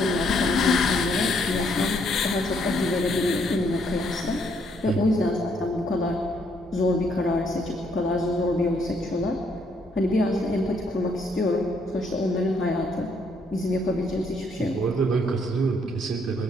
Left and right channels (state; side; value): normal; both; correlation 0.70